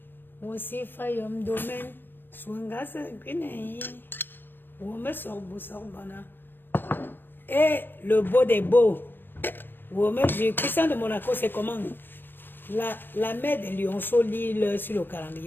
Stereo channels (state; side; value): late; right; 0.095 ms